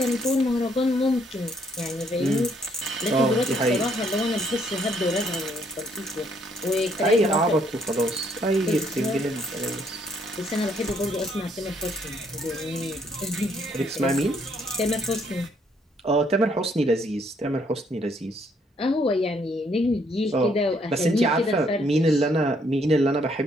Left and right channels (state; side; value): normal; both; correlation 0.69